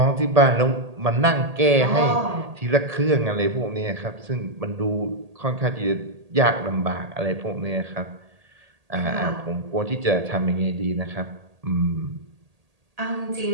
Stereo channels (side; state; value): left; late; 1.8 ms